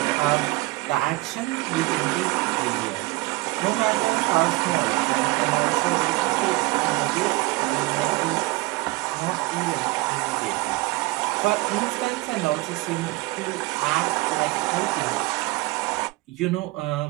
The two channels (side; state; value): left; quieter; 21.7 dB